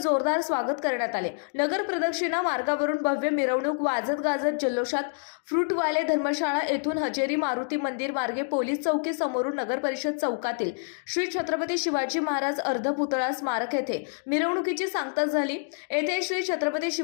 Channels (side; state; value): right; silent; digital silence